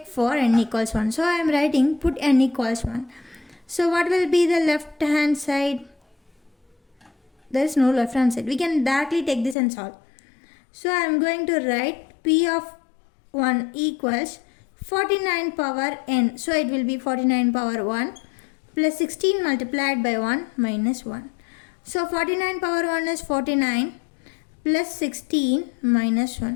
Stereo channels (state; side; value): drops out; right; at 9.6 s